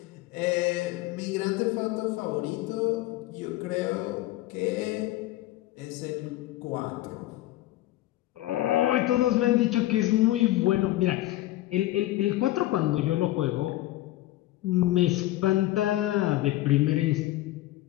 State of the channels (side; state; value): right; quieter; 16.0 dB